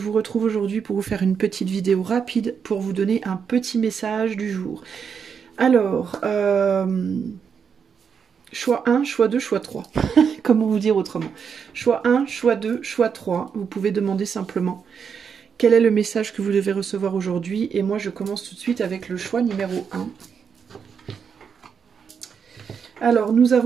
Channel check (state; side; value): quieter; left; 6.7 dB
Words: retrouve aujourd'hui pour vous faire une petite vidéo rapide pour vous donner un petit message du jour. Alors, choix 1, choix 2, choix 3. Comment vous dire autrement? Choix 1, choix 2, choix 3. Vous pouvez demander simplement quel est le message que vous devez recevoir aujourd'hui. Et moi, je commence tout de suite avec le choix numéro 1. Alors, nous